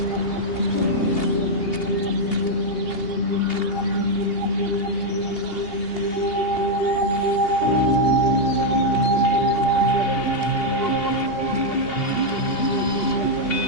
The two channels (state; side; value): late; right; 2.8 ms